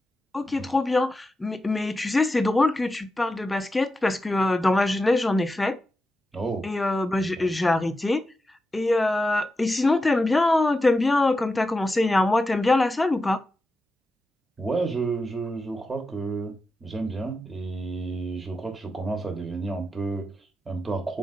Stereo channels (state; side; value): normal; both; correlation 0.90